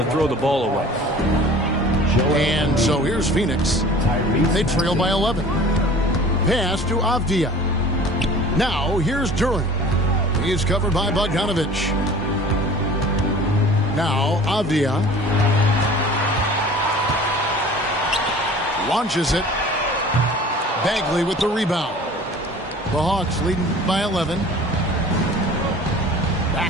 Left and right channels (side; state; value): both; normal; correlation 0.44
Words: throw the ball away. And so here's Phoenix. They trail by 11. Pass to Avdia. Now here's Duren. He's covered by Bogdanovich. Now Avdia launches it. Bagley with the rebound. The Hawks leading by 11.